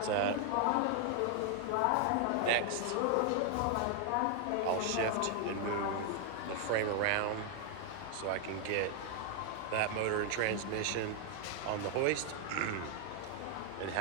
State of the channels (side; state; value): both; different; correlation 0.00